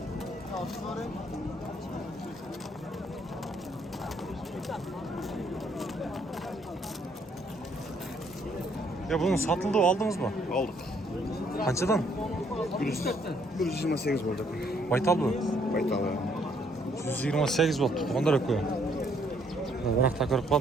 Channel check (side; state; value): both; normal; correlation 0.68